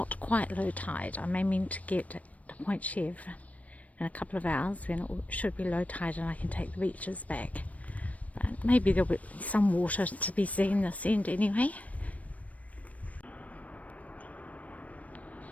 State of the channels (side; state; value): right; late; 0.068 ms